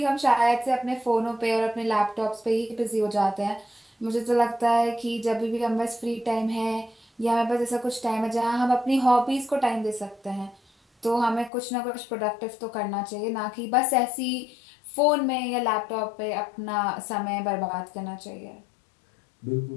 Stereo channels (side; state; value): right; drops out; at 11.5 s